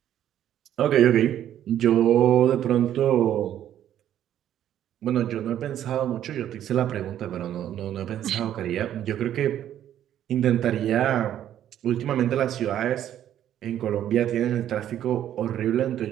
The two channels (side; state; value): left; quieter; 11.1 dB